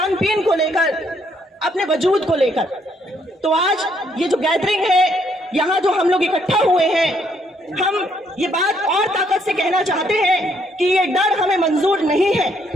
पीन को लेकर, अपने वजूद को लेकर। तो आज ये जो गैदरिंग है, यहाँ जो हम लोग इकट्ठा हुए हैं, हम ये बात और ताकत से कहना चाहते हैं कि ये डर हमें मंजूर नहीं है।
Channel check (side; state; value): both; normal; correlation 0.70